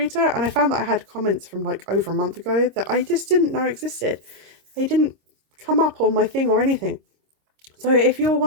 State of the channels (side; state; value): left; late; 26 ms